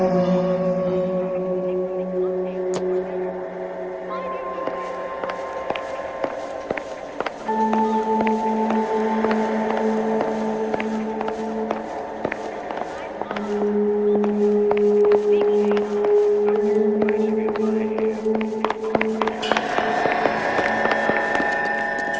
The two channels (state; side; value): identical; both; correlation 1.00